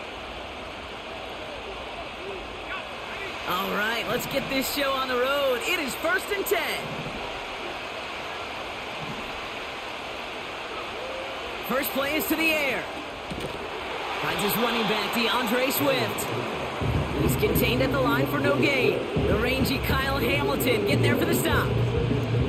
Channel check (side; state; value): both; identical; correlation 1.00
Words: All right, let's get this show on the road. It is 1st and 10. First play is to the air. Finds his running back, DeAndre Swift. He's contained at the line for no gain. The rangy Kyle Hamilton getting there for the stop.